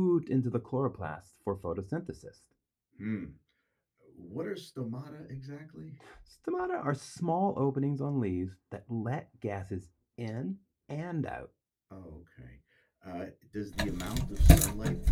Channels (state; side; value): identical; both; correlation 1.00